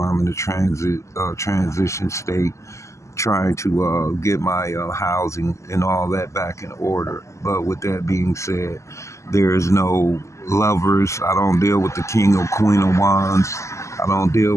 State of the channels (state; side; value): late; right; 0.14 ms